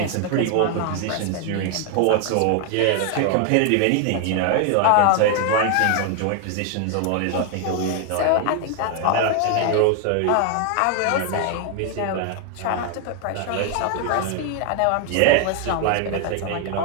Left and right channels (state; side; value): different; both; correlation 0.00